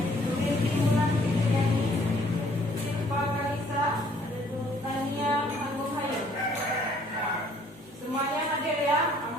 Rinti Mulan Fitriani, Silva Kalisa, Tania Agung Hayu. Semuanya hadir ya,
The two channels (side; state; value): both; normal; correlation 0.61